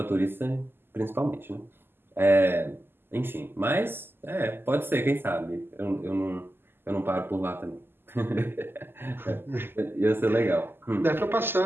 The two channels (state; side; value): late; left; 0.10 ms